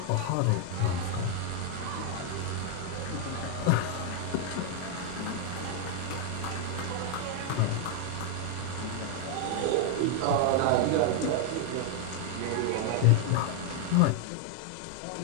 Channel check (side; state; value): both; different; correlation 0.00